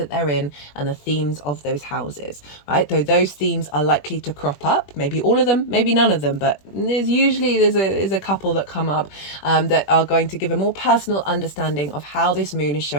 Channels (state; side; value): late; right; 21 ms